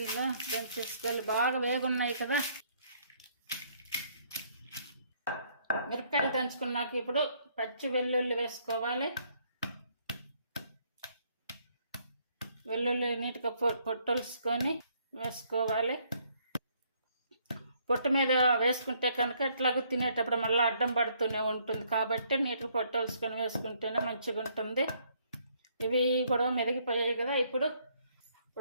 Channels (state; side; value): inverted; both; correlation -0.67